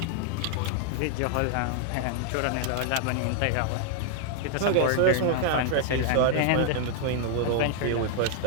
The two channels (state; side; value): different; both; correlation 0.00